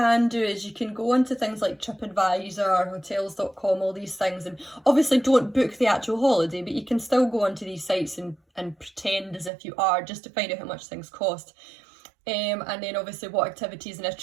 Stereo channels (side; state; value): left; drops out; at 9.5 s